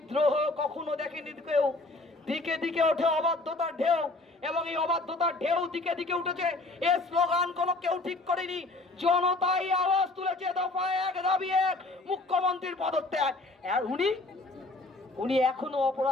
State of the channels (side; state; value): right; quieter; 3.1 dB